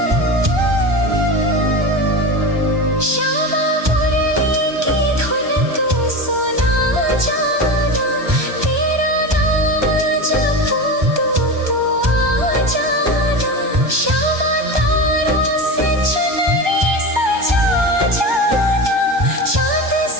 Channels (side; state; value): left; late; 1.2 ms